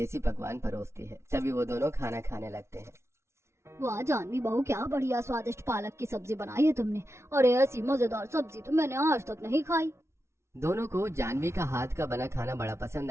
पकवान परोसती है। तभी वो दोनों खाना खाने लगते हैं। वाह जानवी बहू, क्या बढ़िया स्वादिष्ट पालक की सब्जी बनाई है तुमने। अरे ऐसी मजेदार सब्जी तो मैंने आज तक नहीं खाई। दोनों को जानवी का हाथ का बना खाना बड़ा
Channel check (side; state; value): left; late; 0.13 ms